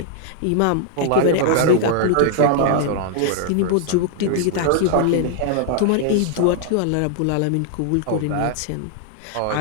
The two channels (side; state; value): both; different; correlation 0.00